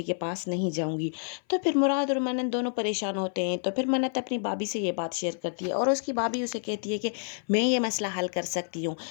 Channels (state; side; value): silent; right; 56 dB below the other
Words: के पास नहीं जाऊंगी। तो फिर मुराद और मन्नत दोनों परेशान होते हैं। तो फिर मन्नत अपनी भाभी से ये बात शेयर करती है और उसकी भाभी उसे कहती है कि मैं ये मसला हल कर सकती हूँ।